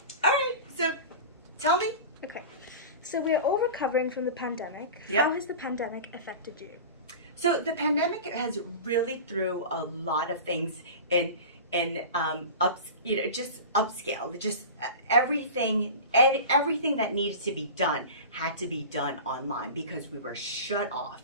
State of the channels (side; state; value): both; inverted; correlation -0.32